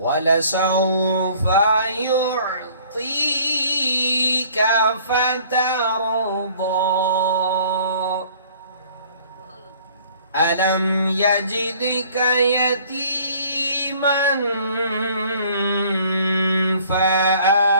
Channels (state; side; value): inverted; both; correlation -0.55